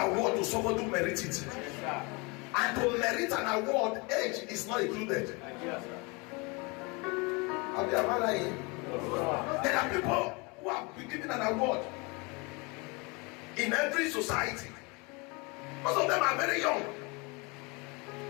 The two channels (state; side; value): quieter; right; 28.7 dB